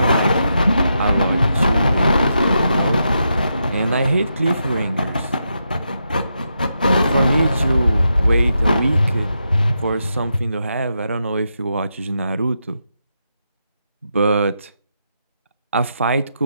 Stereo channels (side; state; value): both; inverted; correlation -0.84